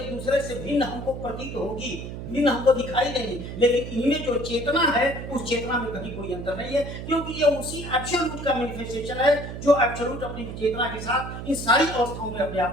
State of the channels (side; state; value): right; noise; hum, 8 dB below the sound